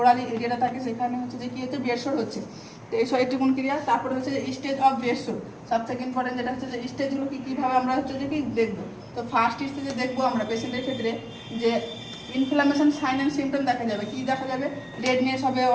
এরিয়াটা থাকে সেখানে হচ্ছে যে কি হচ্ছে বেড সোর হচ্ছে। তো এই এটুকুন ক্রিয়া। তারপরে হচ্ছে যে স্টেজ অফ বেড সোর, সব থেকে ইম্পর্টেন্ট যেটা হচ্ছে যে স্টেজগুলো কীভাবে আমরা হচ্ছে যে কি দেখবো। তো ফার্স্ট স্টেজে দেখবো আমরা পেশেন্টের ক্ষেত্রে যে ইনফ্লামেশন সাইন অ্যান্ড সিমটম দেখা যাবে। কি দেখা যাবে, রেডনেস হবে,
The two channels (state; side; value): identical; both; correlation 1.00